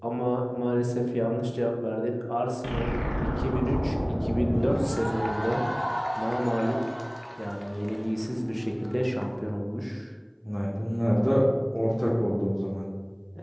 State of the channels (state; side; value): identical; both; correlation 1.00